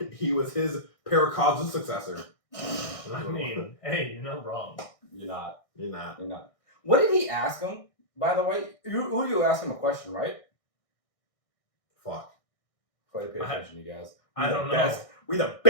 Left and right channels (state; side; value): late; right; 1.6 ms